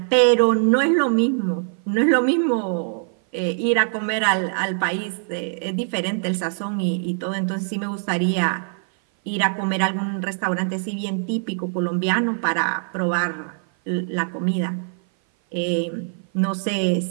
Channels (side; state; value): left; silent; 57 dB below the other